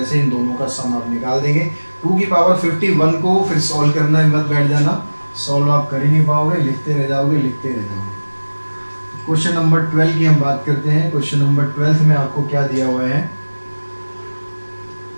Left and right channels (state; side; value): inverted; both; correlation -1.00